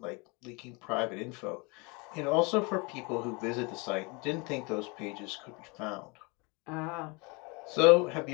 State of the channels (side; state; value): right; quieter; 28.8 dB